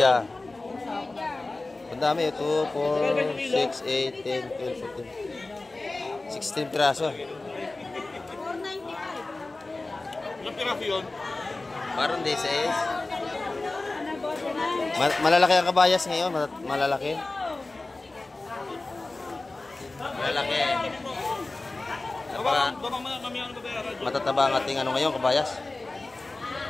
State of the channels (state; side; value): quieter; right; 3.2 dB